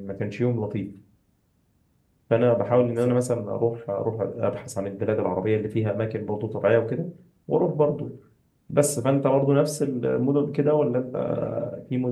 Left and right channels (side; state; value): both; identical; correlation 1.00